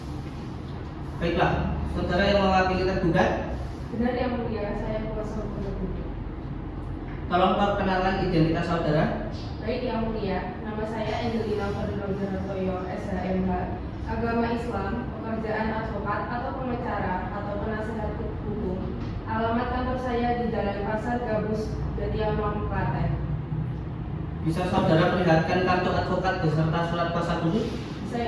Baiklah, saudara yang mewakili tergugat, Benar yang mulia, saya kuasa hukum tergugat. tolong perkenalkan identitas saudara. Baik yang mulia, nama saya Angelina Ferdinand SHMH, agama Islam, pekerjaan advokat atau pengacara atau penasehat hukum. Alamat kantor saya di Jalan Pasar Gabus, Jatiamang, Klaten. Bisa saudara perlihatkan kartu advokat beserta surat kuasa khusus? Bisa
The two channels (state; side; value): identical; both; correlation 1.00